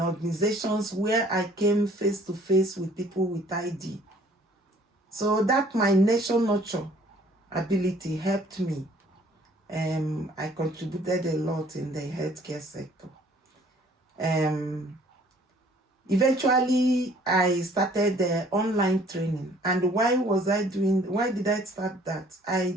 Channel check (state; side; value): normal; both; correlation 0.57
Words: where I came face to face with people with ID. So that my nation nurture ability helped me. I contributed a lot in the healthcare sector. Eventually, I started the online training. And why did I start that? I